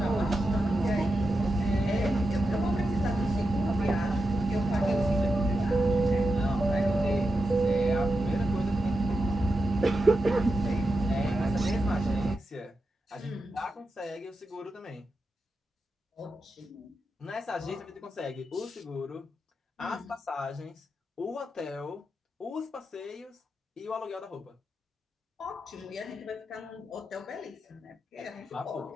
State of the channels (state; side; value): normal; both; correlation 0.89